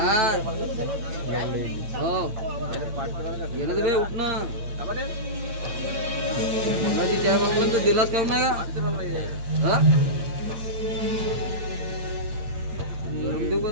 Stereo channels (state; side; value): late; left; 8.8 ms